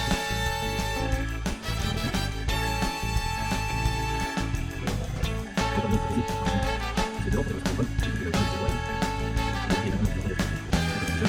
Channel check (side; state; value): both; identical; correlation 1.00